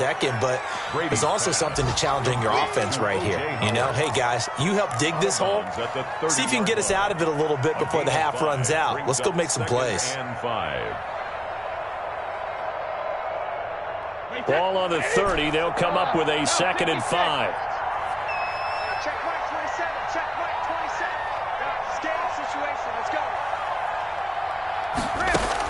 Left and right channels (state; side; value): identical; both; correlation 1.00